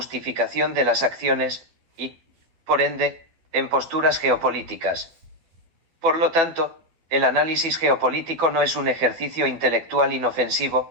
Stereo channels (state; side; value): late; left; 12 ms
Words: de las acciones, y, por ende, en posturas geopolíticas. Por lo tanto, el análisis geopolítico no es un ejercicio intelectual